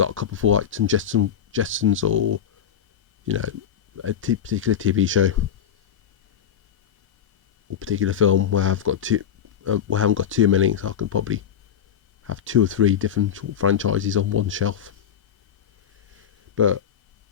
a couple for like some Jetsons, or you know, a particular TV show or particular film where I've got where I haven't got too many, so I can probably have 2 or 3 different franchises on one shelf. But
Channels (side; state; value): right; quieter; 8.7 dB